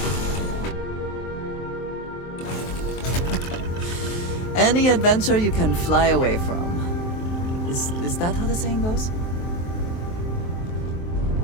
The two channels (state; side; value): late; right; 23 ms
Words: Any adventure you can fly away from. Is that how the saying goes?